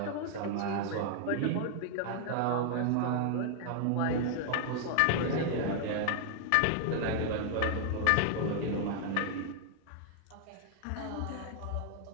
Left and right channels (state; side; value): different; both; correlation 0.00